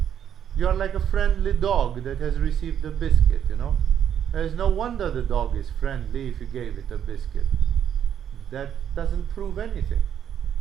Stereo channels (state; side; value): quieter; left; 9.2 dB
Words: You are like a friendly dog that has received a biscuit, There is no wonder the dog is friendly if you gave it a biscuit. That doesn't prove anything.